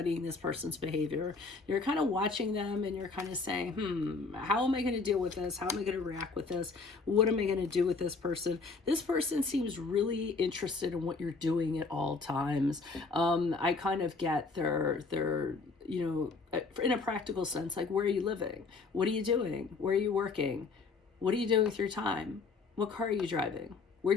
this person's behavior. You're kind of watching them and you're kind of saying, how am I going to deal with this? How am I going to react with this? What am I going to do with this person? This person seems really interested in what you're doing at all times. I kind of get their, you know, in a practical sense, like, where are you living? What are you doing? Where are you working? What are you doing with your time? What car are you driving?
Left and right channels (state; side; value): quieter; right; 4.2 dB